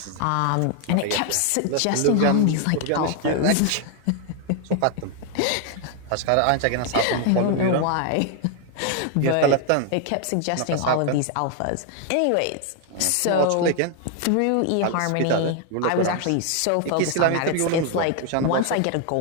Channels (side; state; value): both; different; correlation 0.00